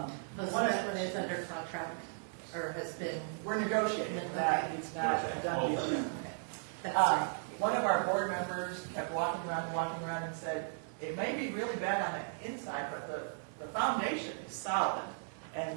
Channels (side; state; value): left; silent; digital silence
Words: Most of one of- that one is under contract, or has been, we're negotiating that, it's not a done deal yet. that's right. One of our board members kept walking around and said, it may be really bad on the inside, but the foundation is solid. And